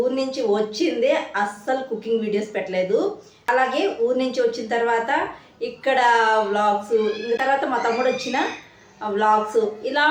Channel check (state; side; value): identical; both; correlation 1.00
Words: నుంచి వచ్చిందే అస్సలు కుకింగ్ వీడియోస్ పెట్టలేదు. అలాగే ఊరి నుంచి వచ్చిన తర్వాత ఇక్కడ వ్లాగ్స్, ఇంకా తర్వాత మా తమ్ముడు వచ్చిన వ్లాగ్స్ ఇలా